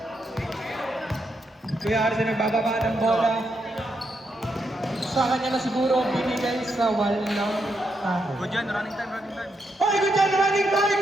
Kuya Arce nagbababa ng bola. Sa kanya na siguro binigay sa wall ng Good yan, running time, running time. Hoy, good job, running time!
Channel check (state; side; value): normal; both; correlation 0.81